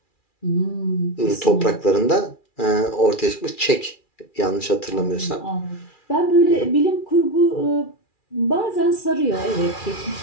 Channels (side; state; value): right; late; 2.4 ms